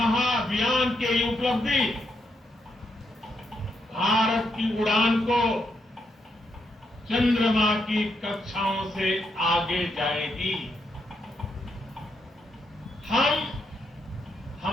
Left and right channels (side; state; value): both; normal; correlation 0.79